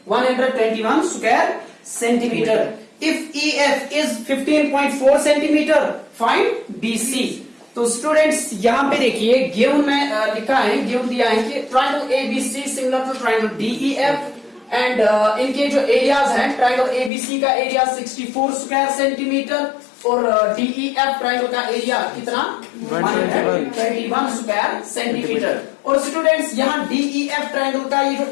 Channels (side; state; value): right; drops out; at 17.1 s